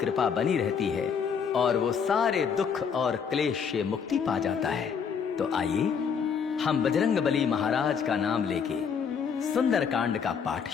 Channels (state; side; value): quieter; right; 6.7 dB